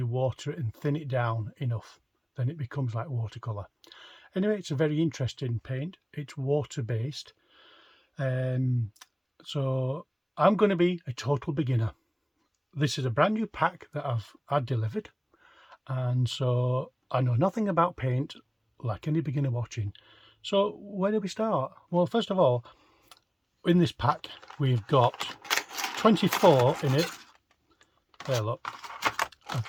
water it and thin it down enough, then it becomes like watercolour. Anyway, it's a very interesting paint. It's water based. So I'm going to be a total beginner. This is a brand new pack that I've had delivered, and so I know nothing about paint like any beginner watching. So where do we start? Well, first of all, in this pack we've got 24 in it. There, look,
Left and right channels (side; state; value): both; identical; correlation 1.00